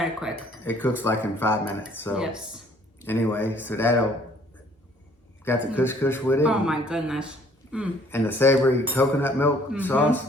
quick. It cooks like in 5 minutes. So Yes. anyway, so that'll got the couscous with it. Oh my goodness. And the savory coconut milk sauce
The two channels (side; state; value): both; normal; correlation 0.59